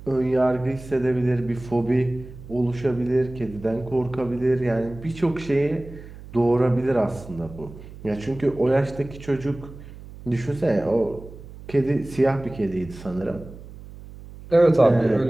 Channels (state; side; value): noise; right; hum, 16 dB below the sound